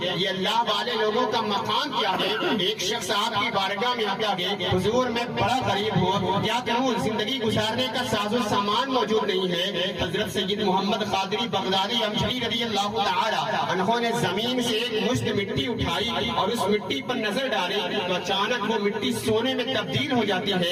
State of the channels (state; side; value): identical; both; correlation 1.00